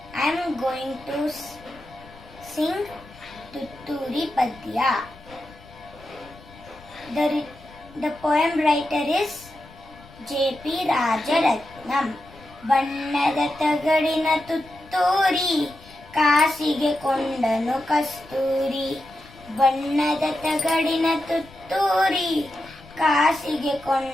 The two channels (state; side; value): noise; left; rumble, 22 dB below the sound